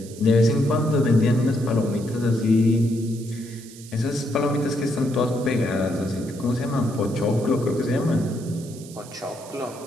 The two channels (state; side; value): noise; right; hiss, 19 dB below the sound